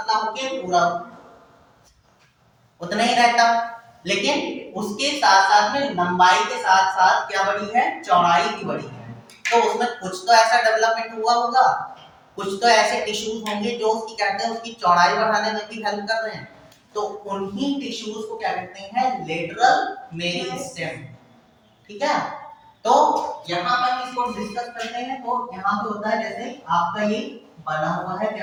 होके पूरा उतना ही रहता, लेकिन उसके साथ साथ में लंबाई के साथ साथ क्या बढ़ी है, चौड़ाई भी बढ़ी है, तो उसमें कुछ तो ऐसा डेवलपमेंट हुआ होगा, कुछ तो ऐसे टिश्यूज होंगे जो उसकी कहते हैं उसकी चौड़ाई बढ़ाने में भी हेल्प कर रहे हैं, तो उन्हीं टिश्यूज को क्या कहते हैं, लेटरल मेरिस्टेम, ठीक है। तो यहाँ पर हम इसको डिस्कस करते हैं, तो यहाँ पे होता है जैसे आपका ये बना हुआ है,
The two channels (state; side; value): identical; both; correlation 1.00